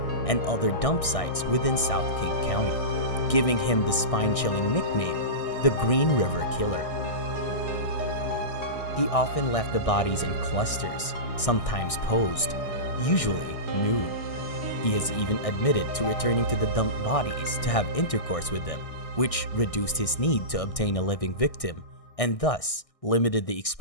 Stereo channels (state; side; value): late; right; 1.6 ms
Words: and other dump sites within South King County, giving him the spine-chilling nickname, the Green River Killer. He often left the bodies in clusters, sometimes posed, usually nude. He has even admitted to returning to the dumped bodies to have intercourse with them, which reduced his need to obtain a living victim and thus limited the